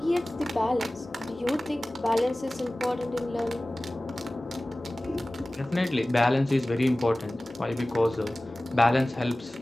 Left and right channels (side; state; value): both; normal; correlation 0.98